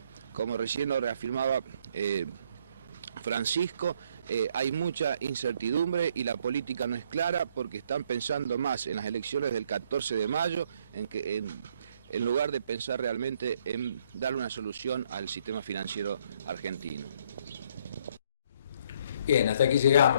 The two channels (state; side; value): inverted; both; correlation -0.67